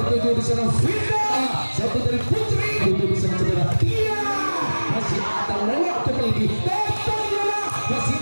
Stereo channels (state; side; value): inverted; both; correlation -1.00